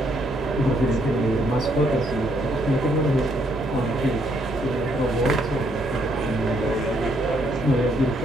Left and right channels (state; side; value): normal; both; correlation 0.71